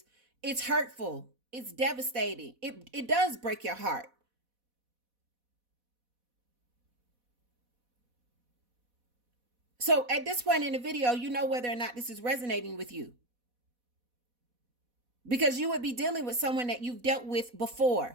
it's hurtful. It's devastating. It does break your heart. So at this point in the video, you know whether or not this is resonating with you. Because you would be dealing with someone that you've dealt with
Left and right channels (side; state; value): left; late; 4.1 ms